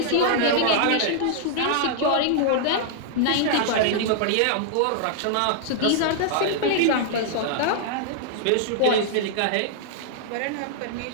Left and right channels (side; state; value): both; different; correlation -0.01